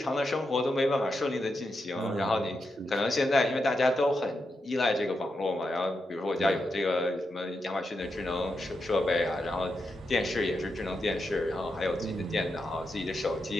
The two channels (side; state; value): both; normal; correlation 0.85